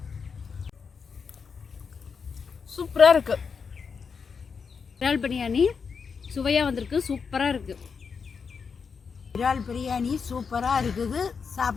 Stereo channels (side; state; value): right; quieter; 5.8 dB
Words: சூப்பராக இருக்கு. இறால் பிரியாணி சுவையாக வந்திருக்கு. சூப்பராக இருக்கு. இறால் பிரியாணி சூப்பராக இருக்குது.